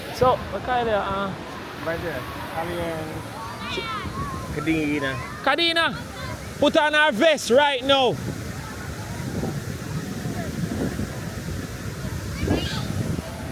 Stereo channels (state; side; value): identical; both; correlation 1.00